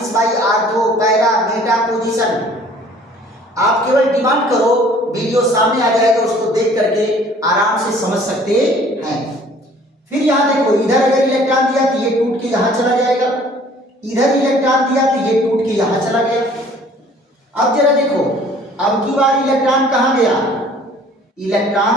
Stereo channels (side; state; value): both; normal; correlation 0.54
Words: by ortho para Meta position. आप केवल डिमांड करो, वीडियो सामने आ जाएगा, उसको देख करके आराम से समझ सकते हैं। फिर यहां देखो इधर अगर इलेक्ट्रॉन दिया तो ये टूट के यहां चला जाएगा, इधर इलेक्ट्रॉन दिया तो ये टूट के यहां चला गया। अब जरा देखो अब की बार इलेक्ट्रॉन कहां गया,